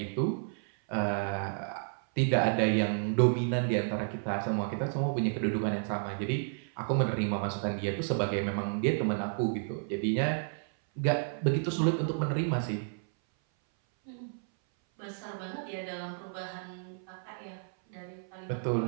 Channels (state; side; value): silent; left; 57 dB below the other